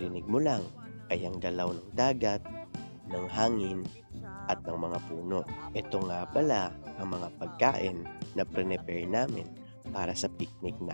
mo lang ay ang galaw ng dagat, ng hangin at ng mga puno. Ito nga pala ang mga pagkain na prepare namin para sa picnic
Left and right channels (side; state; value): both; inverted; correlation -1.00